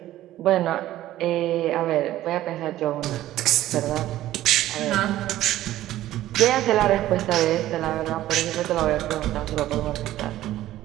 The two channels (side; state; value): left; quieter; 14.3 dB